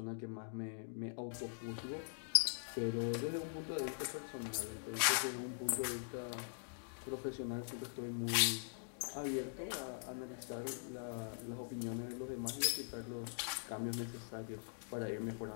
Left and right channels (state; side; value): silent; right; digital silence